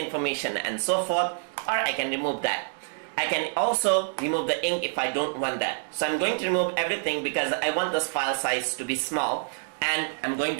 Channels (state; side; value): silent; left; digital silence